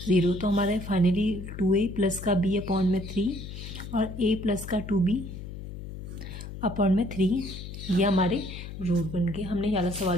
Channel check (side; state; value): left; noise; hum, 10 dB below the sound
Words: 0। तो हमारा फाइनली 2a प्लस का b अपॉन में 3 और a प्लस का 2b अपॉन में 3 ये हमारे रूट बन गए। हमने ये वाला